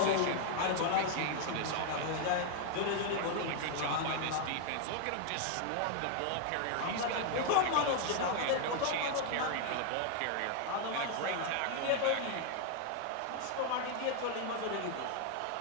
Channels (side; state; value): both; different; correlation 0.00